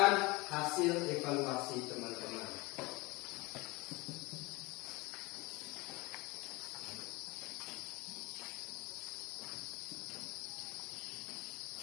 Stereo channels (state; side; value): quieter; right; 23.9 dB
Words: hasil evaluasi teman-teman.